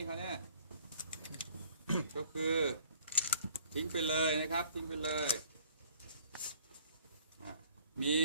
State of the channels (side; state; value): both; inverted; correlation -0.57